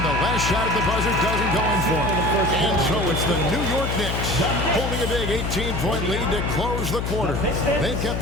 the last shot at the buzzer doesn't go in for him. And so it's the New York Knicks holding a big 18-point lead to close the quarter. They've kept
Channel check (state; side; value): noise; left; hum, 2 dB below the sound